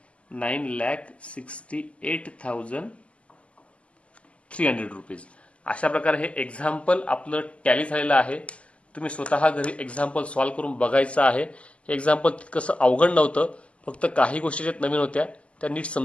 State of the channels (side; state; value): right; late; 0.060 ms